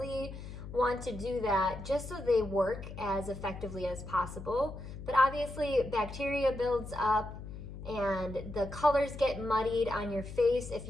want to do that just so they work as effectively as possible. But obviously bacteria builds up and the colors get muddied on your face if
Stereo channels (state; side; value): noise; left; hum, 11 dB below the sound